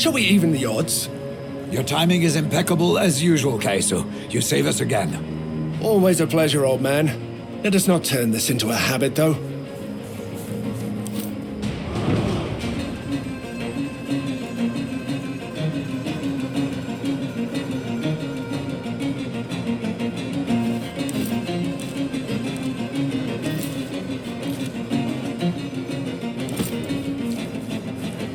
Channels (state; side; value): identical; both; correlation 1.00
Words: we even the odds? Your timing is impeccable as usual, Kaiso. You save us again. Always a pleasure, old man. Let us not turn this into a habit, though.